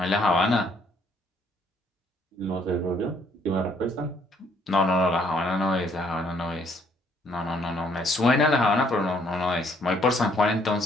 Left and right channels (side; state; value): both; normal; correlation 0.66